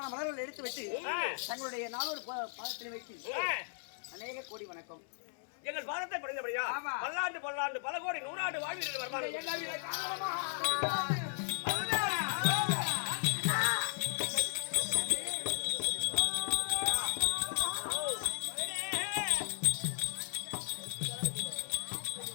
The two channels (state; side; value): silent; right; 54 dB below the other